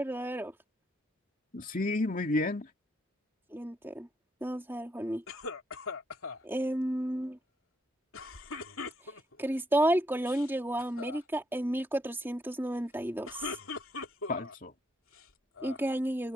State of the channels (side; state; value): both; normal; correlation 0.76